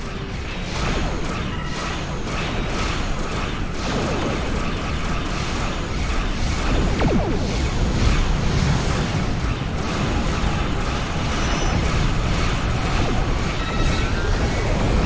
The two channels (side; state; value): both; identical; correlation 1.00